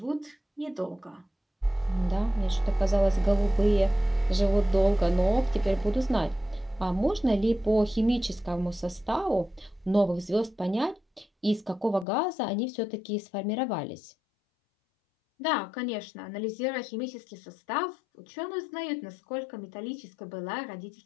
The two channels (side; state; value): right; drops out; at 12.1 s